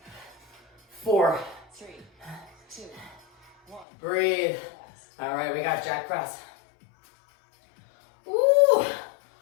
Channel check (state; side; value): drops out; right; at 3.9 s